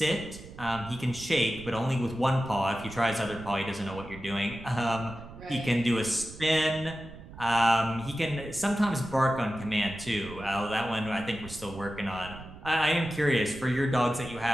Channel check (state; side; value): noise; right; rumble, 15 dB below the sound